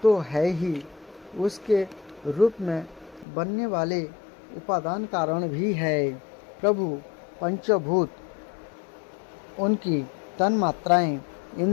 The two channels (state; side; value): drops out; right; at 3.2 s